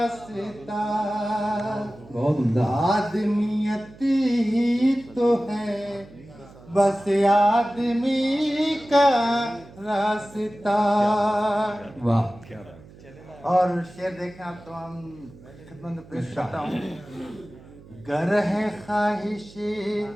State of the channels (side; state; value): right; noise; hum, 21 dB below the sound